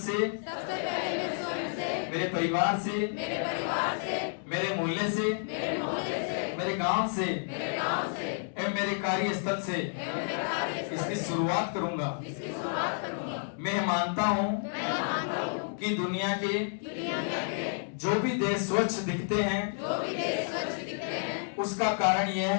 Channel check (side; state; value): right; silent; digital silence